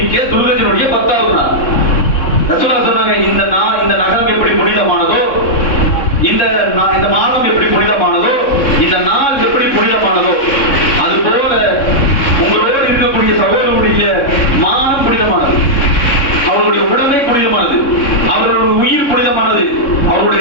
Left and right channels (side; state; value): right; late; 3.6 ms